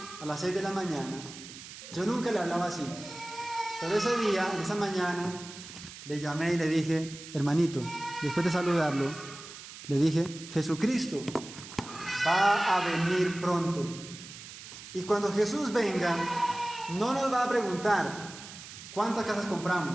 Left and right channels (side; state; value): right; noise; hiss, 14 dB below the sound